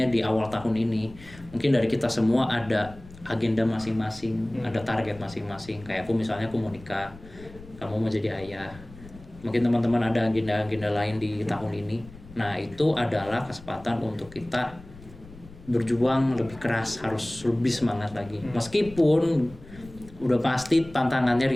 di awal tahun ini, mungkin dari kita semua ada agenda masing-masing, ada target masing-masing. Kayak aku misalnya aku mau nikah, kamu mau jadi ayah. Mungkin teman-teman ada agenda-agenda lain di tahun ini. Nah itu adalah kesempatan untuk kita berjuang lebih keras, harus lebih semangat lagi. Meskipun udah pasti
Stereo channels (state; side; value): noise; left; rumble, 19 dB below the sound